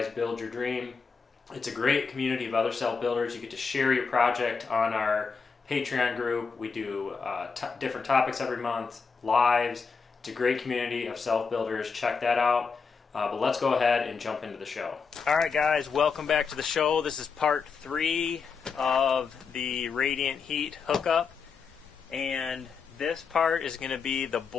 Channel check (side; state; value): right; quieter; 5.4 dB